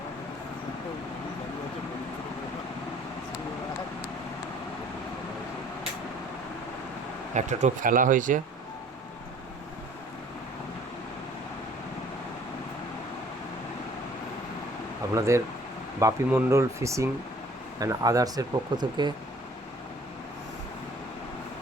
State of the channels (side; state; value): both; normal; correlation 0.53